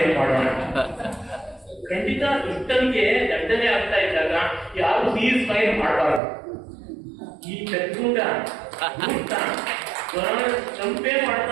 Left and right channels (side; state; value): left; drops out; at 6.2 s